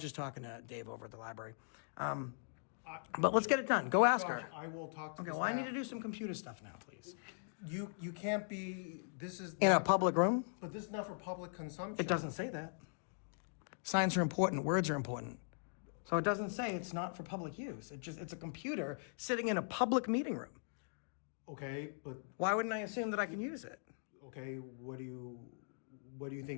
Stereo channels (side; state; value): right; silent; digital silence